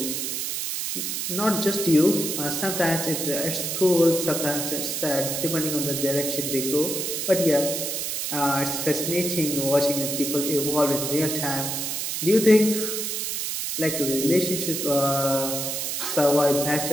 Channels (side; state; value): right; noise; hiss, 2 dB below the sound